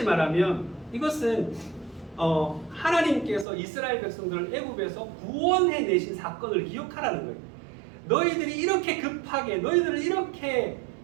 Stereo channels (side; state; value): left; drops out; at 3.5 s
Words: 말하면 이것은 하나님께서 이스라엘 백성들을 애굽에서 구원해내신 사건을 기억하라는 거예요. 너희들이 이렇게 급하게, 너희들을 이렇게